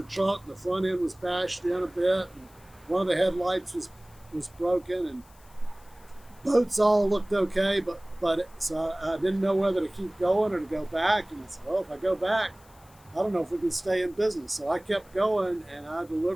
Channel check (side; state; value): left; noise; hiss, 28 dB below the sound